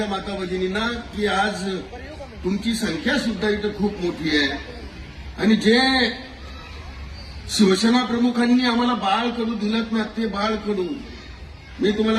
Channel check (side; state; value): both; identical; correlation 1.00